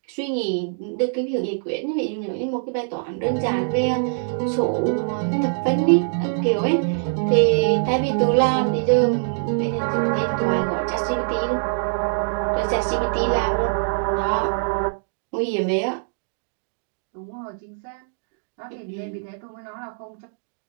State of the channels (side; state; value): left; silent; digital silence